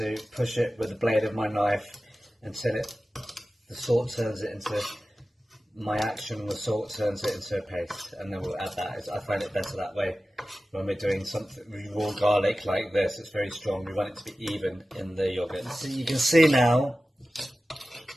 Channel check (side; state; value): both; normal; correlation 0.95